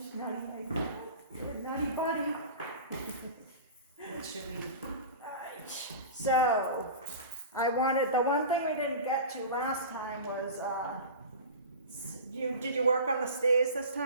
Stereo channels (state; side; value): inverted; both; correlation -0.34